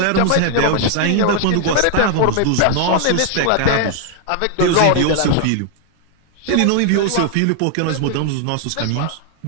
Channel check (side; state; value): both; different; correlation 0.00